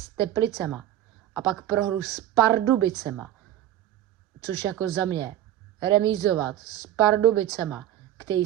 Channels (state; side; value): quieter; left; 12.4 dB